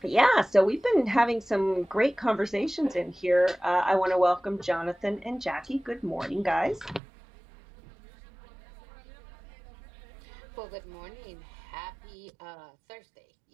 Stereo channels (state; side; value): drops out; left; at 7.0 s